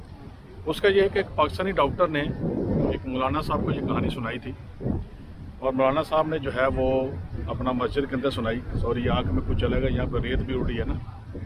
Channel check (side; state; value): both; identical; correlation 1.00